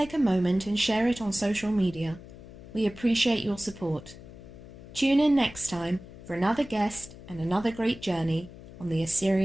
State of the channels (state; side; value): noise; left; hum, 17 dB below the sound